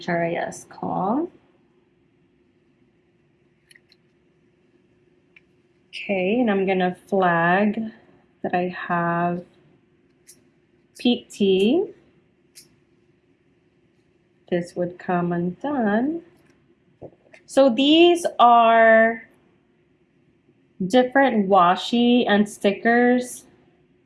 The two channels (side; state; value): both; identical; correlation 1.00